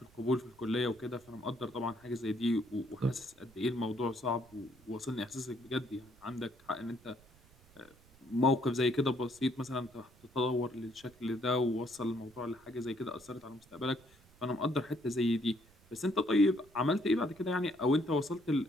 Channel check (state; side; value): noise; right; rumble, 27 dB below the sound